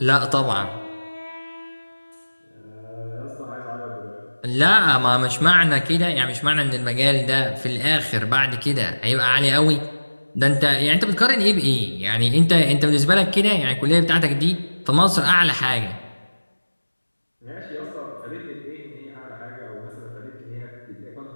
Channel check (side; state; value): both; inverted; correlation -1.00